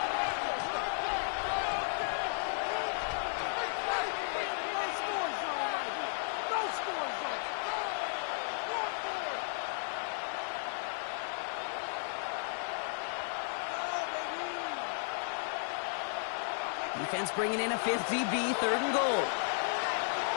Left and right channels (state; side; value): silent; right; 55 dB below the other